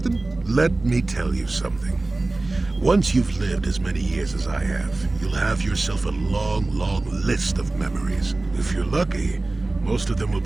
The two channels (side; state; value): left; quieter; 3.0 dB